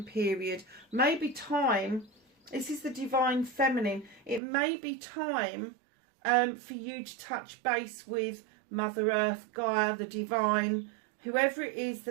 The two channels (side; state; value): left; drops out; at 4.4 s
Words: period, maybe time, this is the Divine Feminine, it may be time for you to touch base with Mother Earth, Gaia, the Divine, whoever it is